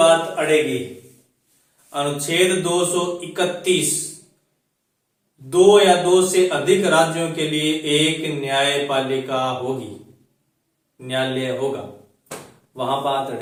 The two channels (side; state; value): both; identical; correlation 1.00